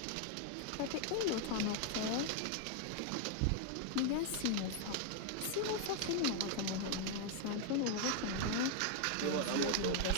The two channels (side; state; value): both; different; correlation 0.00